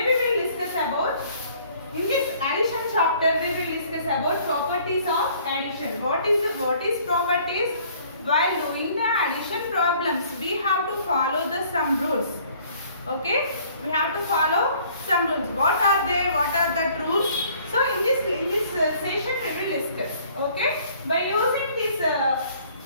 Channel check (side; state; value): both; inverted; correlation -0.57